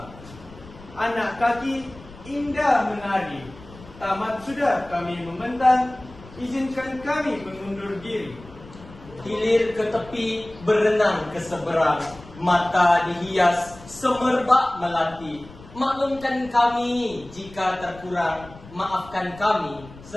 anak kaki indah menari. Tamat sudah kami membentang, izinkan kami mengundur diri. Hilir ke tepi, berenang ke seberang, mata dihias, semerbak melati. Maklumkan kami jika terkurang, maafkan kami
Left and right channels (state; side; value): noise; left; rumble, 19 dB below the sound